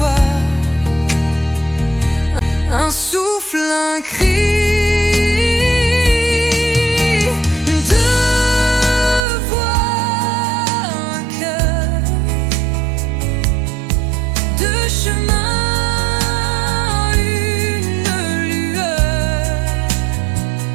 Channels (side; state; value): left; drops out; at 9.2 s